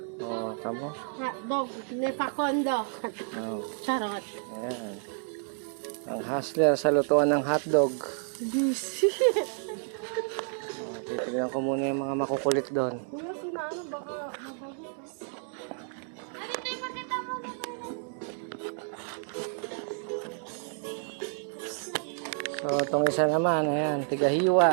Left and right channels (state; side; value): silent; left; 58 dB below the other